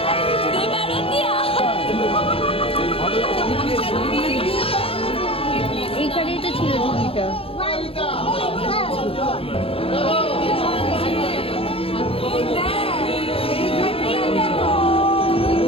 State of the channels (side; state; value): right; late; 0.27 ms